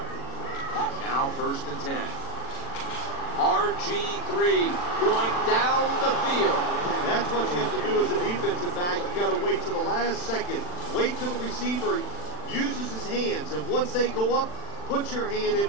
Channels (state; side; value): late; right; 40 ms